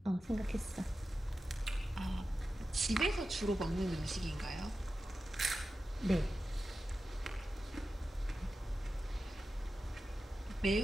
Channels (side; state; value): both; normal; correlation 0.93